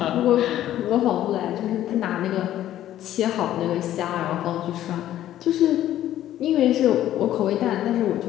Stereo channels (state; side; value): quieter; right; 12.6 dB